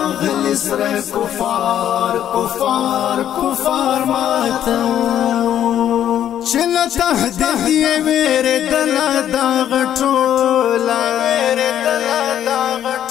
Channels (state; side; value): quieter; right; 10.6 dB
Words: سره کفار ماتو چل تهدیه ویره دلا دا غټولا